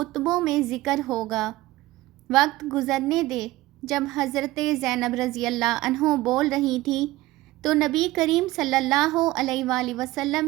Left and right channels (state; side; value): quieter; left; 18.0 dB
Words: میں ذکر ہوگا، وقت گزرنے دے۔ جب حضرت زینب رضی اللہ عنہ بول رہی تھی تو نبی کریم صلی اللہ علیہ وآلہ